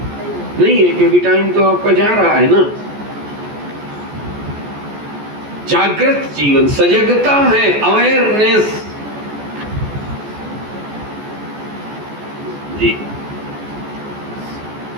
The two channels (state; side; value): late; left; 14 ms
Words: नहीं है, क्योंकि टाइम तो आपका जा रहा है ना। जागृत जीवन, सजगता है, अवेयरनेस जी।